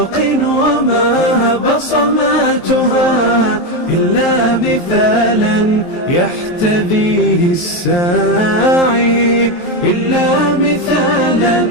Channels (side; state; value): right; late; 23 ms